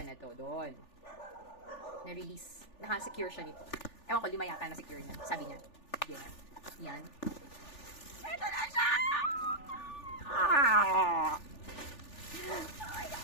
na to doon. Na-release. Naka-secure siya nito. Ewan ko, 5 yata na-secure niya. Sabi niya. Yeah. Yan. Ito na siya! Ah! Oh my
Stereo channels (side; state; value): right; late; 3.4 ms